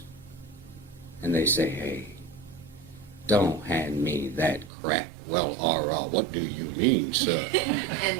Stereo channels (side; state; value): left; drops out; at 4.7 s